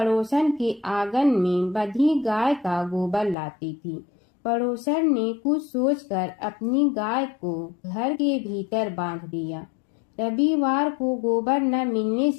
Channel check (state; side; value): drops out; right; at 3.4 s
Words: के आंगन में बंधी गाय का गोबर लाती थी। पड़ोसन ने कुछ सोचकर अपनी गाय को घर के भीतर बांध दिया। रविवार को गोबर न मिलने